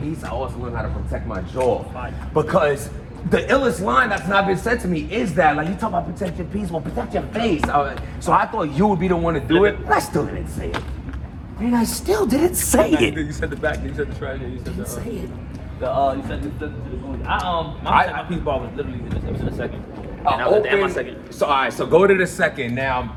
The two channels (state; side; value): identical; both; correlation 1.00